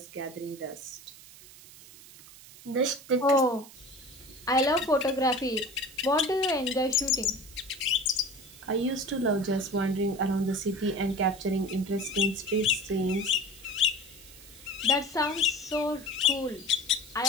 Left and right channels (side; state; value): right; noise; hiss, 19 dB below the sound